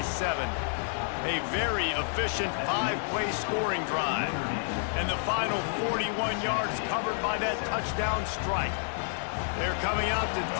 A very efficient 5-play scoring drive. And the final 41 yards covered by that touchdown strike. They're coming out to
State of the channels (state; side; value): silent; right; digital silence